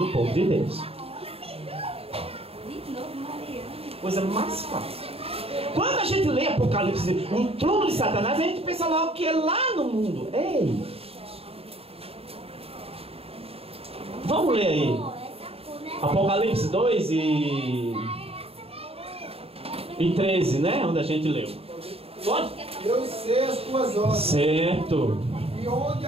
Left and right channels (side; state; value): left; late; 0.28 ms